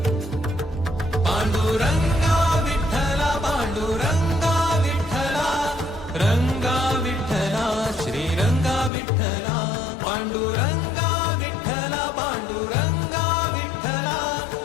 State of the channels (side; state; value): right; drops out; at 8.9 s